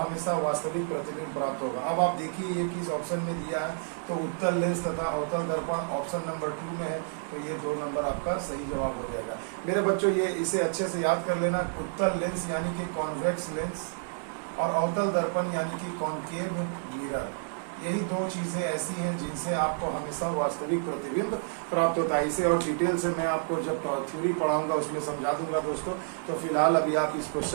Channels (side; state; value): left; silent; digital silence